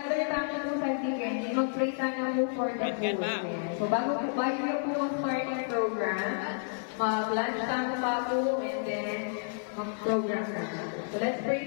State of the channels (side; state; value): right; silent; 57 dB below the other